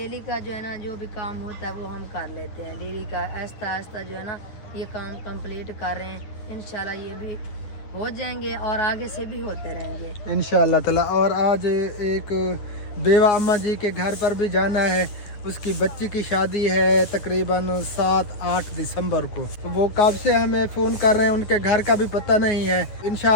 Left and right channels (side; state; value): right; late; 9.2 ms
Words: का जो है ना जो भी काम होता है वो हम कर लेते हैं डेली का, आहिस्ता आहिस्ता जो है ना ये काम कंप्लीट कर रहे हैं। इंशाल्लाह ये भी हो जाएंगे और आगे से भी होते रहेंगे इंशाअल्लाह ताला। और आज एक बेवा अम्मा जी के घर पर भी जाना है, उसकी बच्ची की शादी है तकरीबन 7-8 दिसंबर को। तो वो कब से हमें फ़ोन कर रहे हैं, उनके घर का भी पता नहीं है।